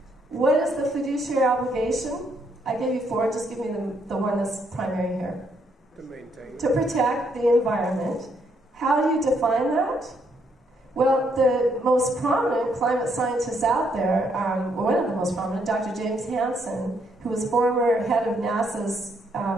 What is the fiduciary obligation? I gave you 4, just give me the one that's primary here. To protect the environment. How do you define that? Well, the most prominent climate scientists out there, one of the most prominent, Dr. James Hansen, who was former head of NASA's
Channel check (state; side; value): normal; both; correlation 0.73